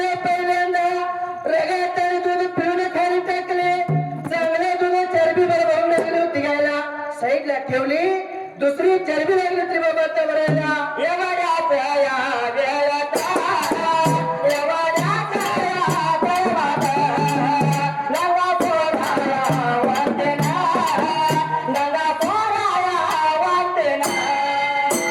साईडला ठेवली दुसरी चरबी लागली होती बाबा त्या भरायला एवढ्या या वेळात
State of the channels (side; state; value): both; identical; correlation 1.00